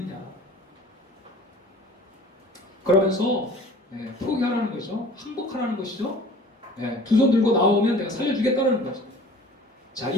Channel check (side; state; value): both; normal; correlation 0.48